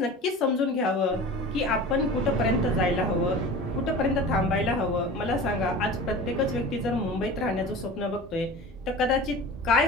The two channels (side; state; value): both; normal; correlation 0.36